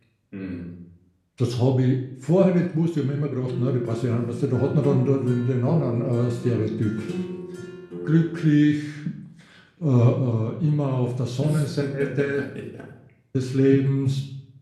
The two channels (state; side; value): identical; both; correlation 1.00